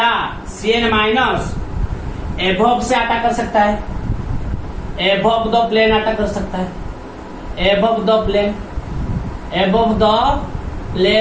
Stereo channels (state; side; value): identical; both; correlation 1.00